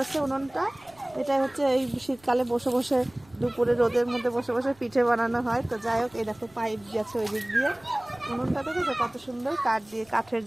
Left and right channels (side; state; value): right; noise; rumble, 29 dB below the sound